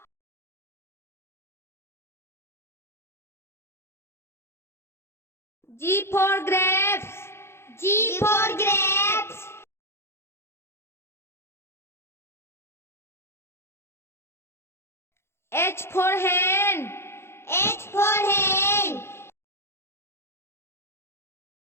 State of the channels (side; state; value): right; late; 0.12 ms